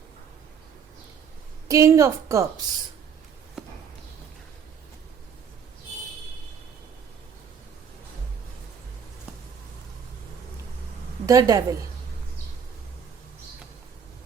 king of cups. The devil.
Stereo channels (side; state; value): left; quieter; 7.1 dB